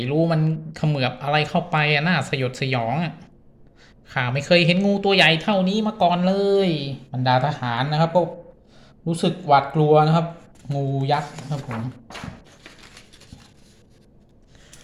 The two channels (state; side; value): identical; both; correlation 1.00